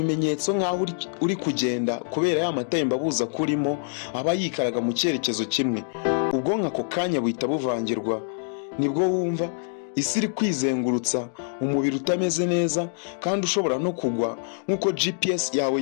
nk'aho uri kugenda kubera ya matembabuzi akurimo aba yikaraga mu cyerekezo kimwe. Ubwonko ako kanya buhita buvangirwa. Nibwo wumva isi iri kwizengurutsa, umubiri utameze neza kandi ushobora no kugwa nk'uko GPS yawe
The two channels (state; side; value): silent; right; digital silence